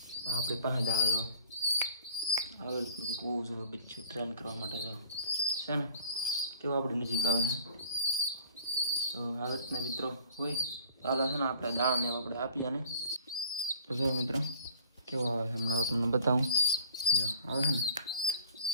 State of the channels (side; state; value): both; inverted; correlation -0.50